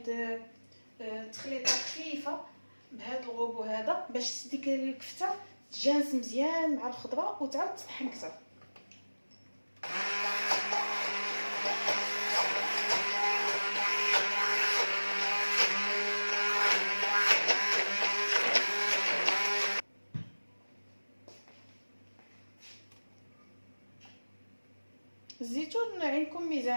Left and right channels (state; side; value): inverted; both; correlation -1.00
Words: تخليطه خفيفه بهذا الغوبو هذا باش ديك الكفته تجانس مزيان مع الخضره وتعاود تطحن كثر. الزيتون عندكم